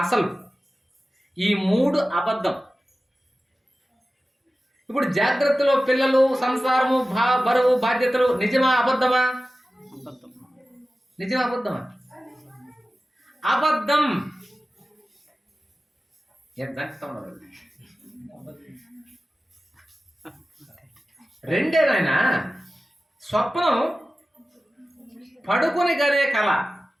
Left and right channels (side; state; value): both; normal; correlation 0.95